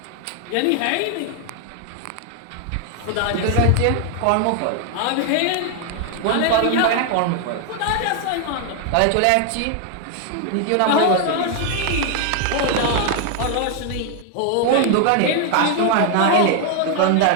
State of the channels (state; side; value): different; both; correlation 0.00